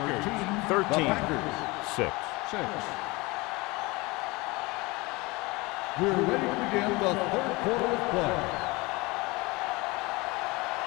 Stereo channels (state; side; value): quieter; right; 23.8 dB